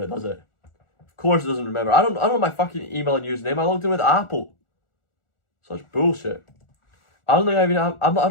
does it? Of course it doesn't remember. I don't know my fucking email and username. I logged in with Apple. Such bullshit. I don't think I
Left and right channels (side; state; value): right; late; 1.4 ms